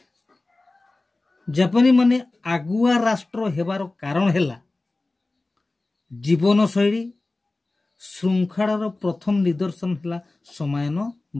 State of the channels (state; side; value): quieter; right; 3.1 dB